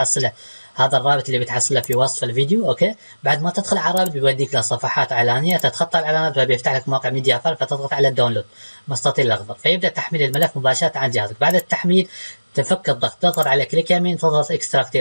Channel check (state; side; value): inverted; both; correlation -1.00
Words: اللي بتحصله في وصف الفيديو. اوكي، بعد ما تدخل على الرابط بيوديك لصفحات اعلانيه، تتخطى الاعلانات فبيفتح لك موقع ميديا فايل، فتضغط على الداونلود مستطيل الاخضر فيبدا تحميل الملف مباشره عن جهازك. بعد التحميل تفك الضغط، تضغط على كليك يمين، تضغط اكستراكت